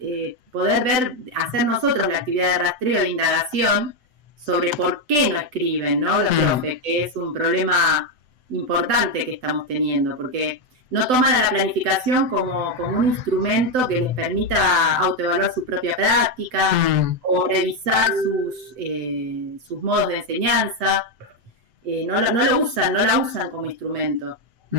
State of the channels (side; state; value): left; late; 7.9 ms